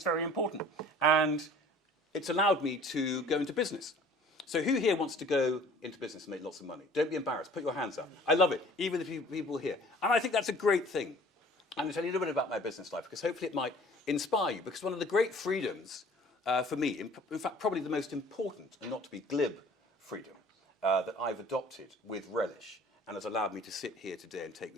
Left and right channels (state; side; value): normal; both; correlation 0.50